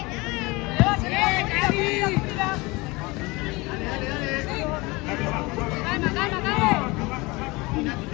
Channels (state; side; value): quieter; right; 23.9 dB